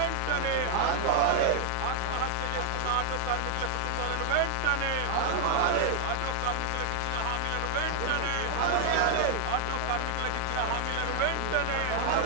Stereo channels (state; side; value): different; both; correlation 0.01